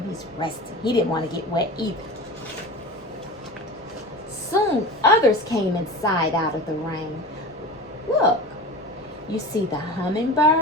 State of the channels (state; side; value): normal; both; correlation 0.32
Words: He's resting. He didn't want to get wet either. Soon, others came inside out of the rain. Look, you see the